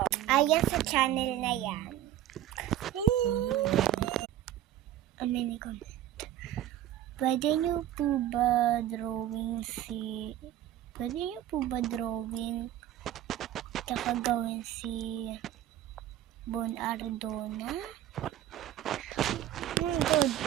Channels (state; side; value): quieter; left; 12.4 dB